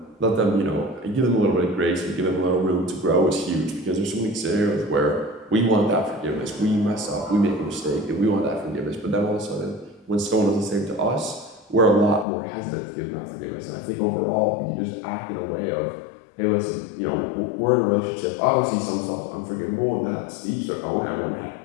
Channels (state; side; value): drops out; right; at 12.2 s